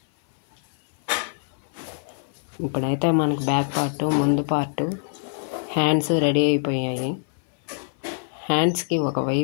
ఇప్పుడైతే మనకు బ్యాక్ పార్ట్, ముందు పార్ట్, హ్యాండ్స్ రెడీ అయిపోయాయి. హ్యాండ్స్కి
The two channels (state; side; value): silent; right; 58 dB below the other